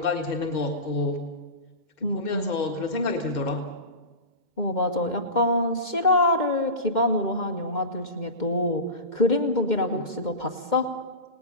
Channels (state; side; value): late; right; 2.1 ms